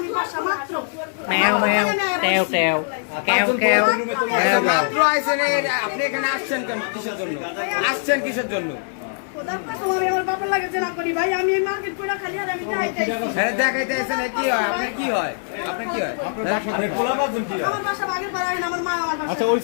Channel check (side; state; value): right; silent; 62 dB below the other